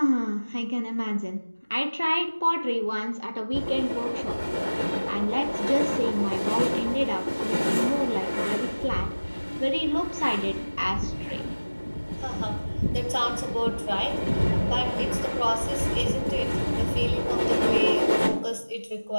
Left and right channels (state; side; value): inverted; both; correlation -1.00